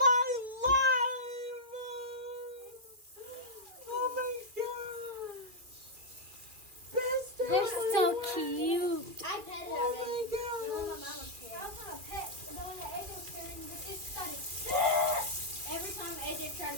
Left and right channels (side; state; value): left; late; 2.3 ms